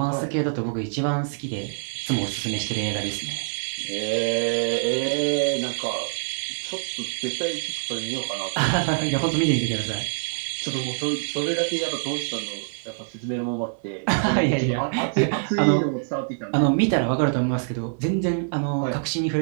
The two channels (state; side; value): silent; left; digital silence